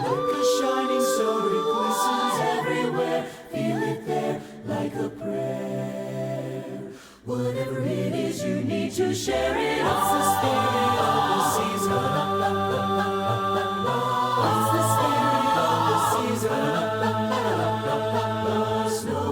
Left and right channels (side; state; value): both; identical; correlation 1.00